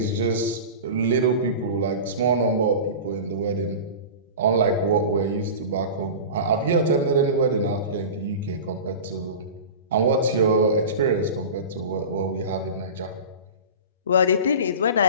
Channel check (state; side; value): inverted; both; correlation -0.31